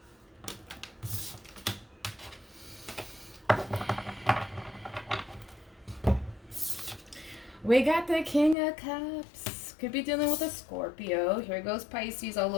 We got the King of Cups. Could be dealing with a Scorpio. Here goes Pisces all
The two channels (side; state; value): right; drops out; at 8.6 s